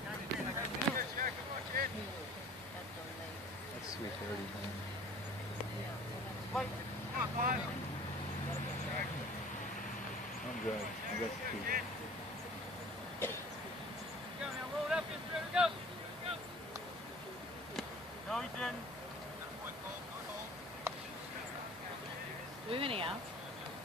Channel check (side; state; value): both; normal; correlation 0.46